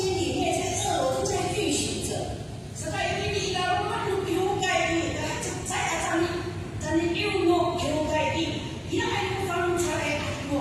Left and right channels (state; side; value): identical; both; correlation 1.00